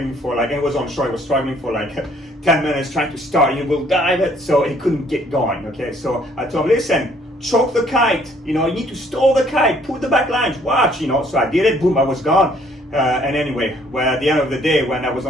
for like, and it was on shore, he was struggling for like 10 minutes trying to start. He will dive it, so he couldn't get going. Okay, so I told him, listen, choke the kite, you need to stall the kite, put the back lines, watch, so I did it, boom, I was gone. And anyway, well, at the end of the day, when I was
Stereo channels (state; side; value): normal; both; correlation 0.63